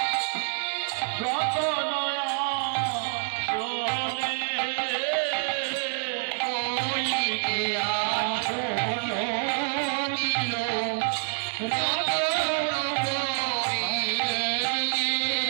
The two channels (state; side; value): silent; left; digital silence